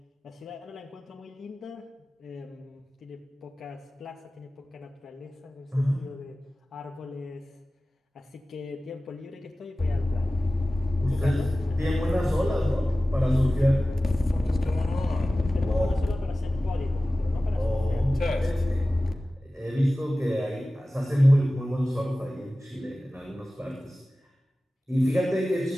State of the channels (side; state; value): both; normal; correlation 0.96